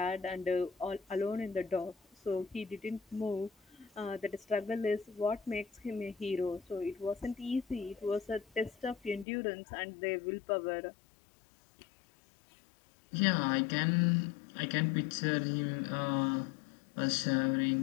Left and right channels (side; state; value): right; drops out; at 9.2 s